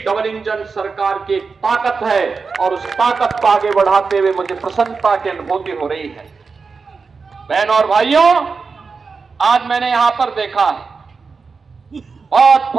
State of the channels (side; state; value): left; quieter; 4.8 dB